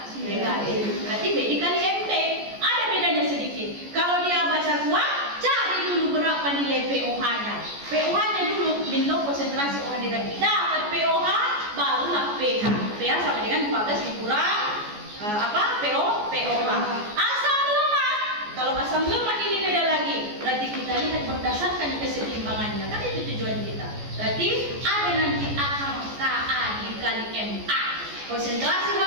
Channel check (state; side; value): late; left; 14 ms